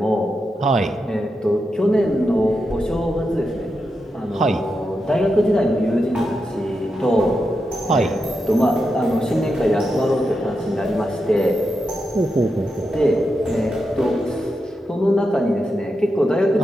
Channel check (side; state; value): both; normal; correlation 0.87